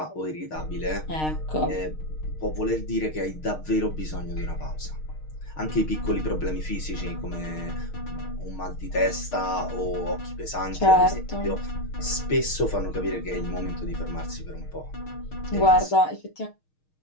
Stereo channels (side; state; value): right; late; 6.5 ms